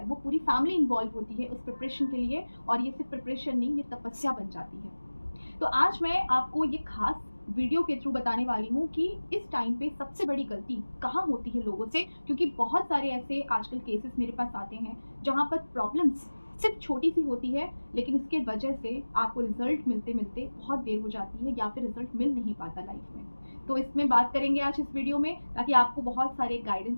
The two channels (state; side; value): inverted; both; correlation -1.00